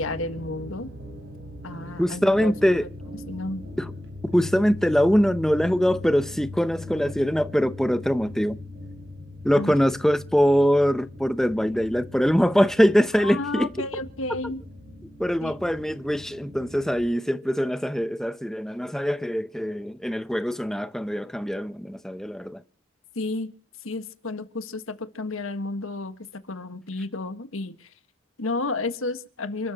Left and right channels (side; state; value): both; normal; correlation 0.91